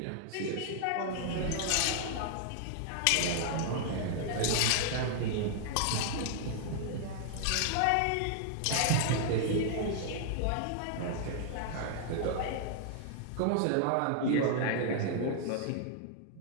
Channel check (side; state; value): both; different; correlation -0.01